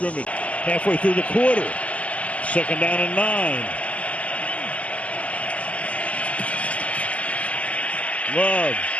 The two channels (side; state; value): right; late; 0.068 ms